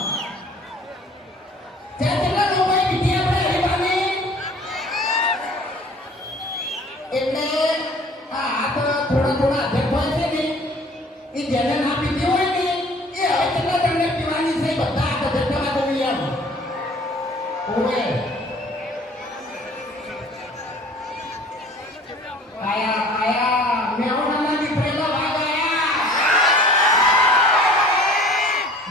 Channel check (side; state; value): both; normal; correlation 0.50